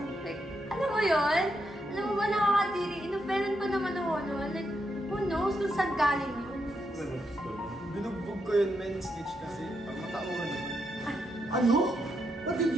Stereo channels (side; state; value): both; normal; correlation 0.81